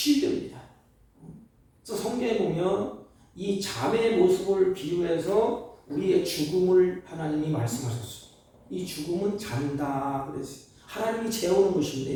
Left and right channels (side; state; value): both; identical; correlation 1.00